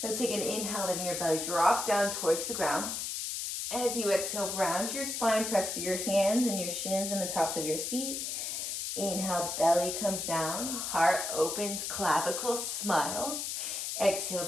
Let's take an inhale, letting your belly drop down towards the ground. As you exhale, round your spine, press through your hands and your shins and the tops of your feet. Inhale, belly comes down, heart opens, clavicle, smile. Exhale,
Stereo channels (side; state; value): left; noise; hiss, 3 dB below the sound